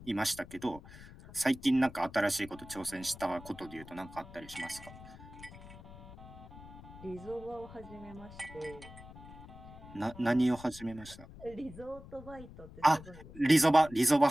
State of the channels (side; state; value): left; noise; rumble, 17 dB below the sound